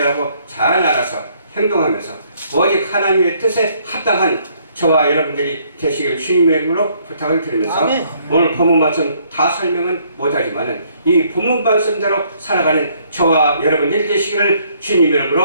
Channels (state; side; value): inverted; both; correlation -0.66